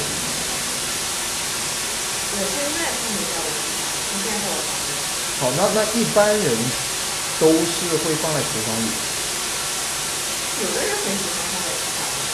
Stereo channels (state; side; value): identical; both; correlation 1.00